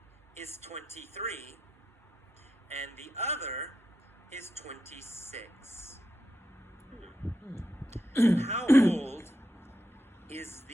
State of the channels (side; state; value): both; normal; correlation 0.86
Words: is 23 and the other is 26. How old is